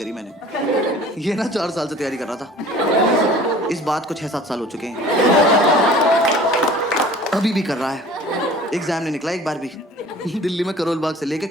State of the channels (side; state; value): both; normal; correlation 0.46